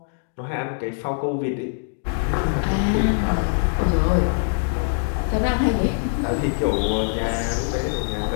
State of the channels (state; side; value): silent; right; digital silence